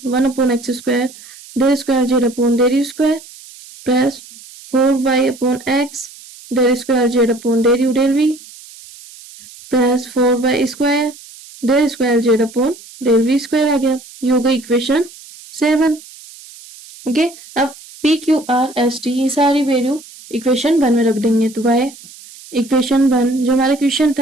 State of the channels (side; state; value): right; noise; hiss, 20 dB below the sound